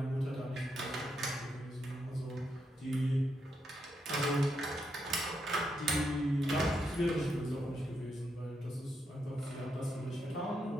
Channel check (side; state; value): both; normal; correlation 0.81